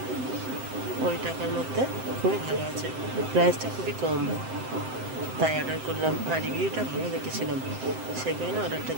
ওই টাকার মধ্যে খুবই ভালো আছে। প্রাইসটা খুবই কম, তাই অর্ডার করলাম। আর রিভিউটা ভালো দেখেছিলাম, সেই কারণে অর্ডারটা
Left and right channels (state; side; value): late; left; 7.7 ms